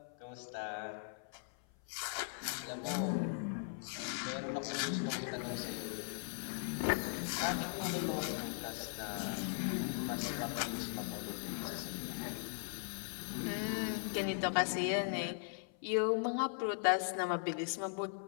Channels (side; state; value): right; silent; 52 dB below the other